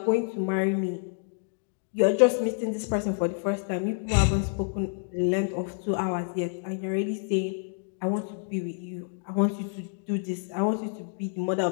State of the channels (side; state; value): right; silent; digital silence